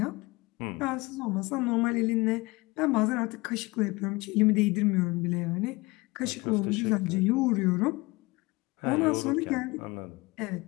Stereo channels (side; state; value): right; quieter; 23.4 dB